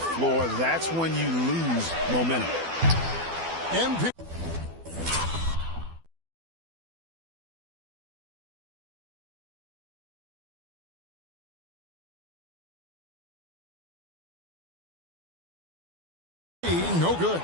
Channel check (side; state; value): left; late; 12 ms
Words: floor. That's when you lose momentum. MP. No good.